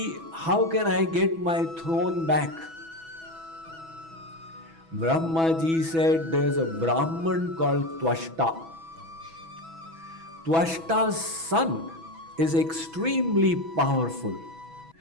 how can I get my throne back? Brahmaji said, there's a Brahman called Twashta. Twashta's son is extremely powerful.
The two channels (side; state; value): left; late; 6.1 ms